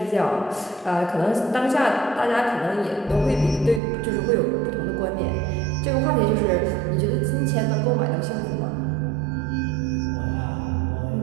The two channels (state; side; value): drops out; left; at 3.8 s